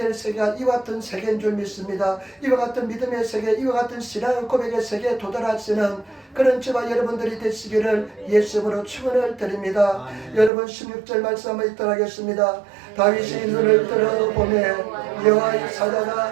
세계가 이와 같은 세계인 줄 믿습니다. 이와 같은 믿음의 세계, 이와 같은 신앙의 고백의 세계에 도달하시는 그런 저와 여러분들이 되시기를 예수님으로 축원을 드립니다. 여러분 16절 말씀 한번 읽도록 하겠습니다. 다윗이 눈을 들어보매 여호와의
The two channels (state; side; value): drops out; left; at 10.5 s